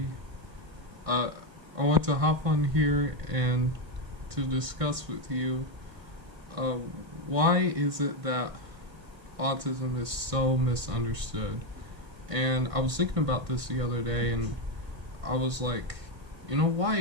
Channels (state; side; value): late; left; 1.5 ms